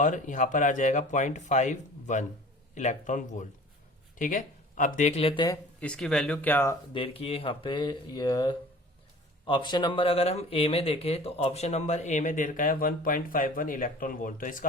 यहाँ पर आ जाएगा 0.51 इलेक्ट्रॉन वोल्ट। ठीक है, अब देख लेते हैं इसकी वैल्यू क्या दे रखी है यहाँ पे। ये ऑप्शन नंबर अगर हम ए में देखें तो ऑप्शन नंबर ए में दे रखा है 1.51 इलेक्ट्रॉन वोल्ट, तो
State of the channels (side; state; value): both; normal; correlation 0.44